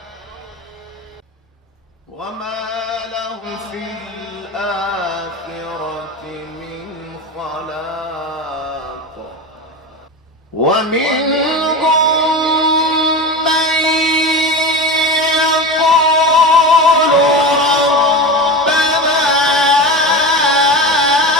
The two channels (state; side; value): normal; both; correlation 0.25